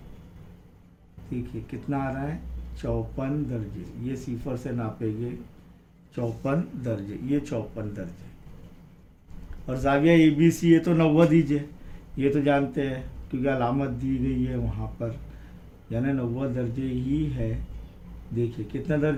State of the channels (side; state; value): both; identical; correlation 1.00